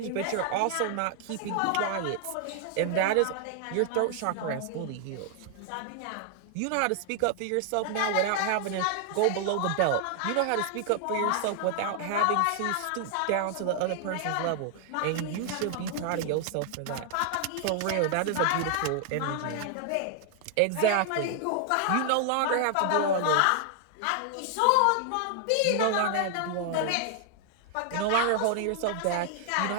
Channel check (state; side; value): different; both; correlation 0.00